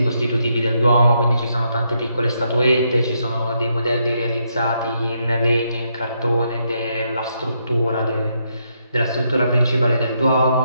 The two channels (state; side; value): inverted; both; correlation -0.78